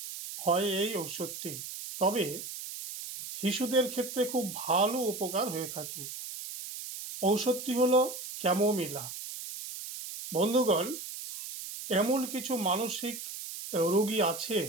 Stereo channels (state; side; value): noise; right; hiss, 9 dB below the sound